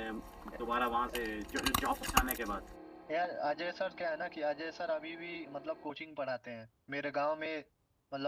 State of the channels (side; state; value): both; identical; correlation 1.00